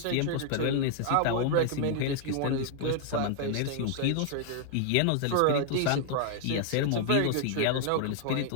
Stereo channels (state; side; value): different; both; correlation 0.00